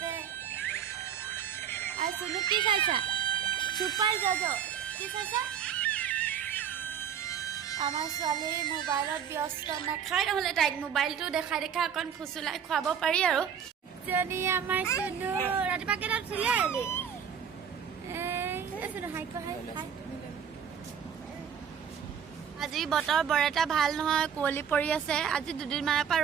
আৰু সুনু কি খাইছা সুপাৰ জাজো কি খাইছা আমাৰ ছোৱালী মোবাইলত ব্যস্ত নাখায় নহলে তাইক মোবাইলটো দেখাই দেখা অকণ ফুচুলাই খুৱাব পাৰি আৰু जनी आमार सुनु रातिपा केटात उठिले आली सुनु हाई को हाई আজি বতৰ বৰ এটা ভাল নহয় কোলি পৰি আছে আজি দুদিন মানৰ পৰা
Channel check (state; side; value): quieter; left; 8.0 dB